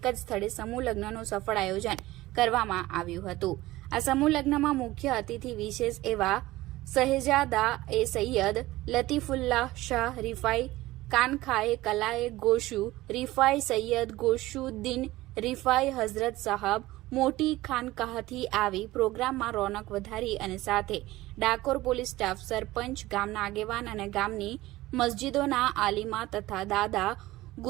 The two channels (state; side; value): quieter; left; 17.8 dB